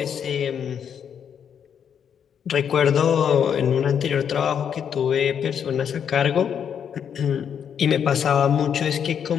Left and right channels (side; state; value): right; quieter; 8.1 dB